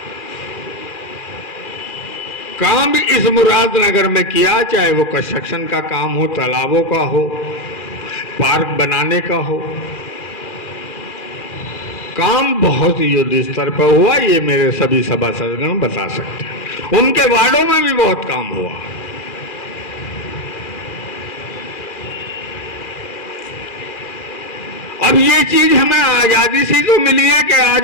काम इस मुरादनगर में किया, चाहे वो कंस्ट्रक्शन का काम हो, तालाबों का हो, पार्क बनाने का हो, काम बहुत युद्ध स्तर पर हुआ। ये मेरे सभी सभासदगण बता सकते हैं। उनके वार्डों में भी बहुत काम हुआ। अब ये चीज हमें आजादी से तो मिली है कि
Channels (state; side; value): late; right; 2.4 ms